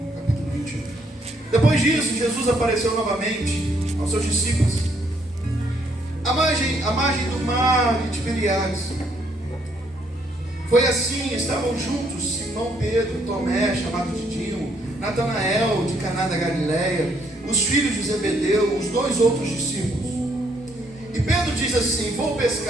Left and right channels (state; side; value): normal; both; correlation 0.70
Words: capítulo 21. Depois disso, Jesus apareceu novamente aos seus discípulos à margem do mar de Tiberíades. Foi assim, estavam juntos Simão Pedro, Tomé, chamado Didimo, Natanael, de Caná da Galileia, os filhos de Zebedeu, os 2 outros discípulos. E Pedro diz assim: vou